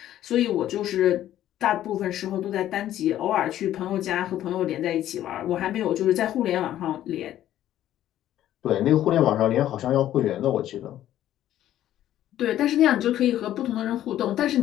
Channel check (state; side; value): quieter; right; 12.4 dB